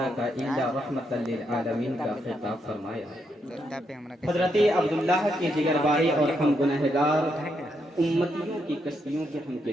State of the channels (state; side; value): normal; both; correlation 0.79